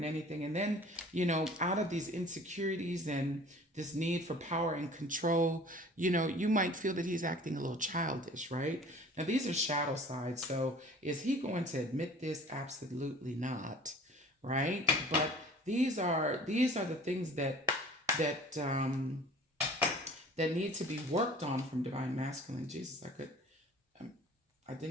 anything. And then, out of these insecurities and this need for power and control, you might feel that he's acting a little childish, right? Now, these are shadow sides. So is he going to admit this? Absolutely not, right? But these are the things that need to be worked on from divine masculine. Jesus, I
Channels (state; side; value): normal; both; correlation 0.47